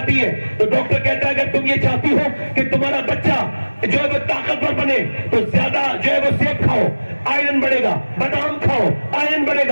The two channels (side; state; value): both; inverted; correlation -1.00